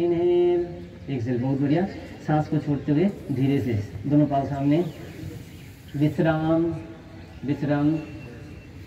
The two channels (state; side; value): identical; both; correlation 1.00